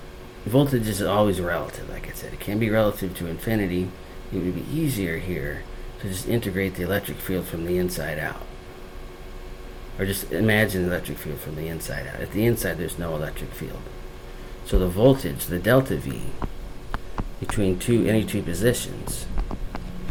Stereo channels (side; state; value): both; identical; correlation 1.00